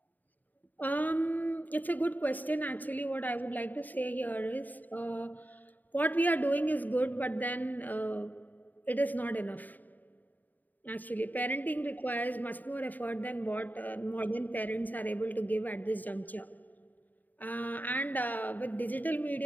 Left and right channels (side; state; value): right; late; 0.085 ms